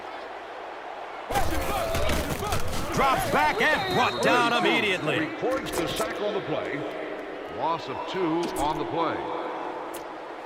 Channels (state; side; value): identical; both; correlation 1.00